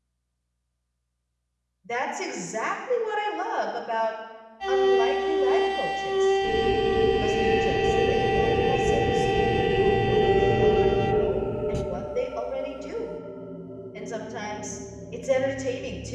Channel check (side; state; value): both; identical; correlation 1.00